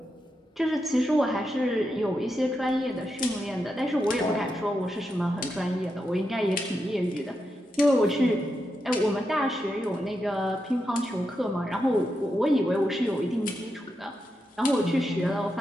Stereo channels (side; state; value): both; normal; correlation 0.86